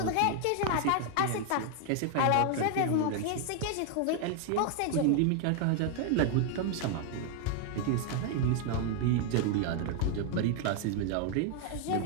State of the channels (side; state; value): both; different; correlation 0.00